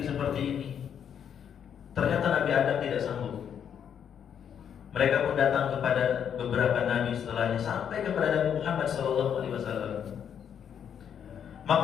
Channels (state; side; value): quieter; right; 8.4 dB